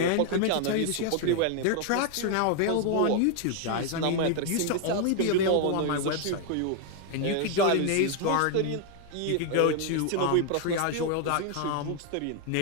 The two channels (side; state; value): both; different; correlation 0.00